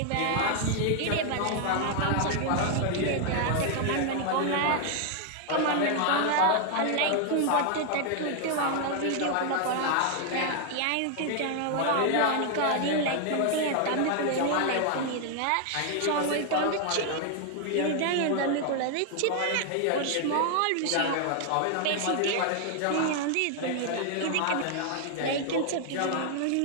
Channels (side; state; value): both; different; correlation 0.00